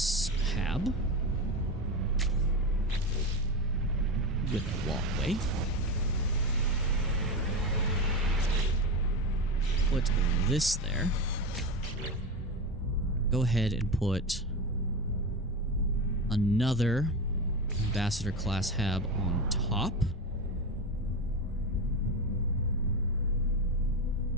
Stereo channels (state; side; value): normal; both; correlation 0.20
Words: hab with a walkway. Put this there. Go ahead and put another ambassador class hab on top.